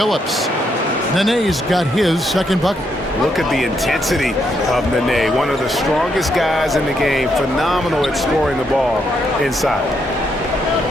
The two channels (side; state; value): both; normal; correlation 0.77